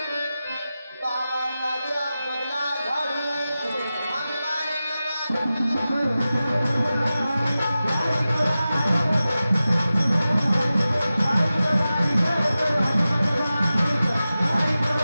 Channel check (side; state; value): both; inverted; correlation -0.94